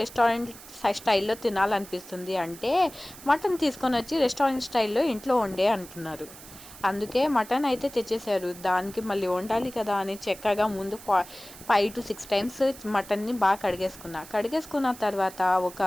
రెస్టారెంట్ స్టైల్లో తినాలనిపిస్తుంది అంటే మటన్ తీసుకొని వచ్చి రెస్టారెంట్ స్టైల్లో ఇంట్లో వండే అంటున్నారు. అందుకే మటన్ అయితే తెచ్చేసారు. దానికి మళ్ళీ వండాలి కదా అని చక్కగా ముందు 5 to 6 టైమ్స్ మటన్ని బాగా కడిగేసుకున్న తర్వాత ఒక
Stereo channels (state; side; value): noise; right; hiss, 17 dB below the sound